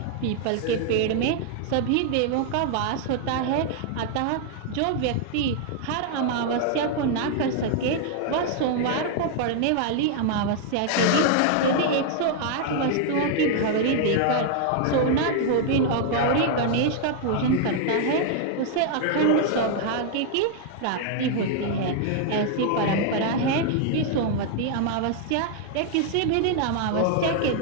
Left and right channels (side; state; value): both; different; correlation 0.00